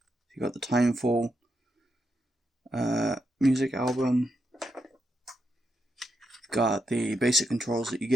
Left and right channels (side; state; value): both; normal; correlation 0.83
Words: You got the Timefall music album. Got the basic controls that you